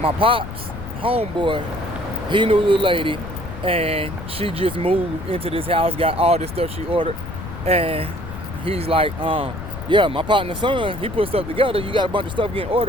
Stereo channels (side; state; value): left; noise; rumble, 10 dB below the sound